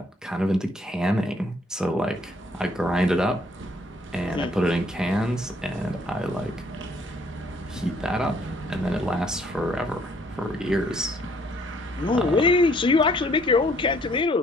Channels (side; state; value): both; normal; correlation 0.64